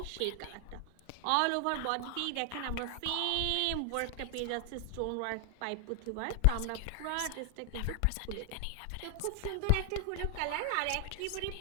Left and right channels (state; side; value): different; both; correlation 0.00